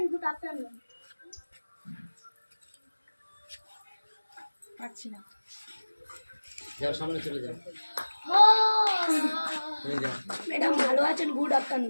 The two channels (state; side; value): inverted; both; correlation -1.00